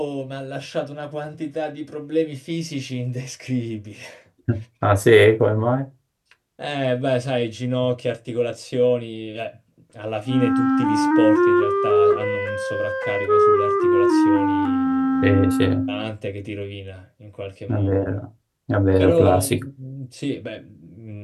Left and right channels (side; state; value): both; identical; correlation 1.00